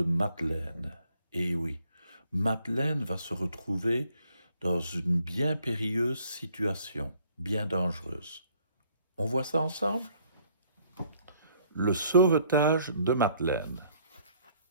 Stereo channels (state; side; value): inverted; both; correlation -0.63